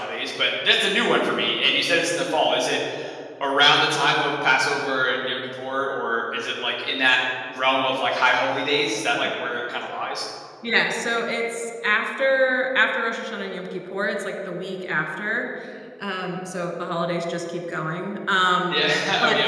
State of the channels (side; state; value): both; identical; correlation 1.00